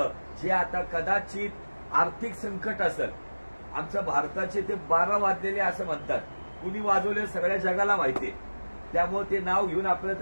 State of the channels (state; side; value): inverted; both; correlation -1.00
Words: जे आता कदाचित आर्थिक संकट असेल. आमच्या भारताचे ते 12 वाजलेले असं म्हणतात. कुणी वाजवले सगळ्या जगाला माहितीये, त्यामुळे ते नाव घेऊन आपल्याला